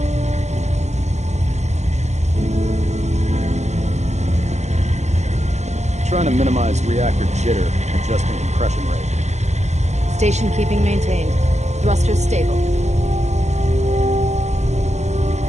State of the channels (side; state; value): left; late; 0.33 ms